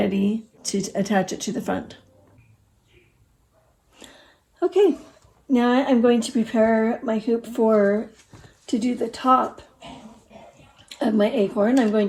to attach it to the front. Okay. Now I'm going to prepare my hoop to do the top of my acorn. I'm going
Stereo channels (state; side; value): identical; both; correlation 1.00